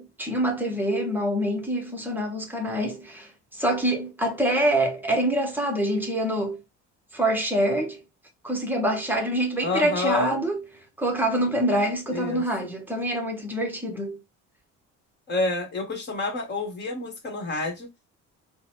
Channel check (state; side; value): normal; both; correlation 0.32